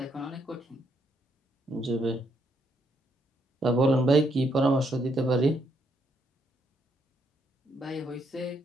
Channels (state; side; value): normal; both; correlation 0.74